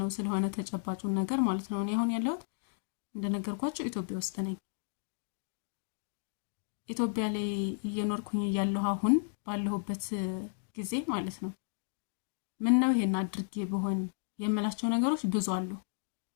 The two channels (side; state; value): right; silent; digital silence